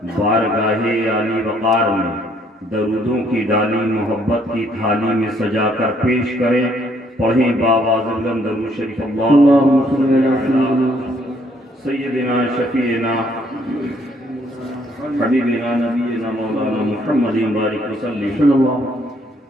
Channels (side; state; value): both; normal; correlation 0.67